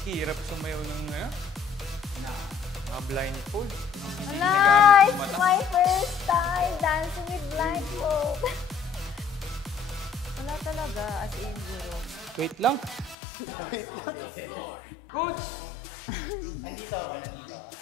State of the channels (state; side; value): drops out; right; at 13.2 s